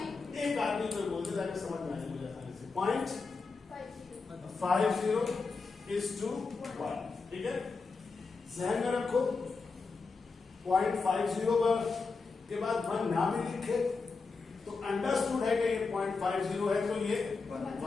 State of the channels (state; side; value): quieter; right; 4.4 dB